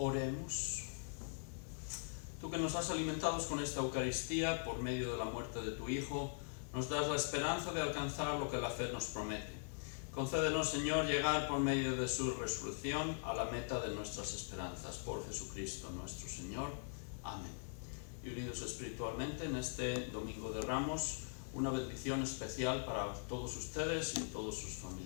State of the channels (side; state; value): right; silent; digital silence